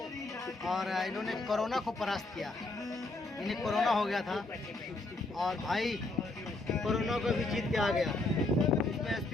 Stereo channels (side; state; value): right; quieter; 3.1 dB